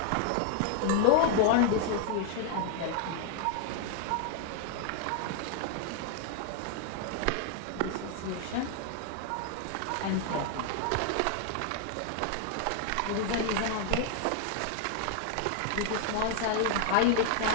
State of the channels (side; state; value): both; different; correlation 0.00